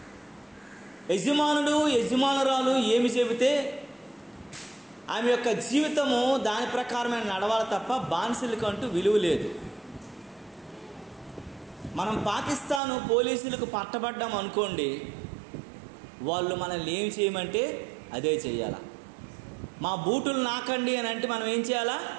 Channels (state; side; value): drops out; left; at 12.8 s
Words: యజమానుడు యజమానురాలు ఏమి చెబితే ఆమె యొక్క జీవితము దాని ప్రకారమే నడవాలి తప్ప బానిసలకంటూ విలువ లేదు. మనం పాకిస్తాను పోలీసులకు పట్టబడ్డాం అనుకోండి, వాళ్ళు మనల్ని ఏం చేయమంటే అదే చెయ్యాలా. మా బూటులు నాకండి అని అంటే మనం ఏం చేయాలా?